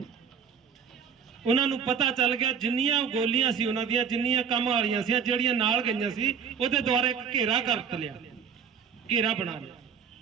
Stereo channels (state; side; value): quieter; left; 6.8 dB